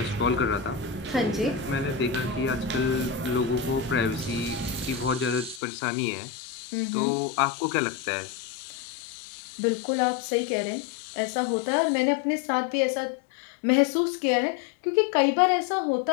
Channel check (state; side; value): drops out; right; at 5.6 s